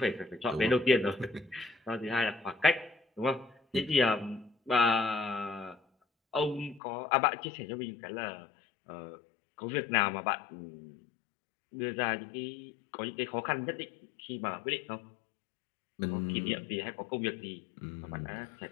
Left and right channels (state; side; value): drops out; right; at 6.8 s